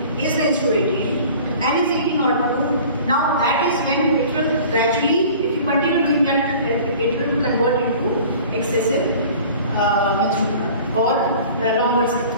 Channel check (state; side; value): inverted; both; correlation -0.45